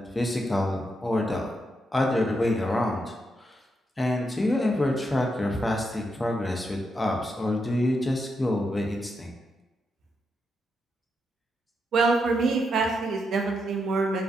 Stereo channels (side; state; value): both; normal; correlation 0.83